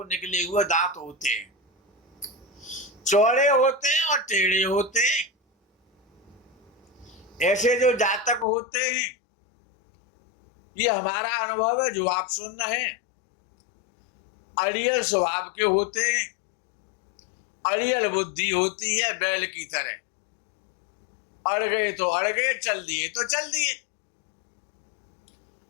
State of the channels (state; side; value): drops out; right; at 8.5 s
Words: निकले हुए दांत होते हैं, चौड़े होते हैं और टेढ़े होते हैं। ऐसे जो जातक होते हैं ये हमारा अनुभव है जो आप सुन रहे हैं, अड़ियल स्वभाव के होते हैं, अड़ियल बुद्धि होती है बैल की तरह, अड़ गए तो अड़ गए, चल दिए तो चल दिए।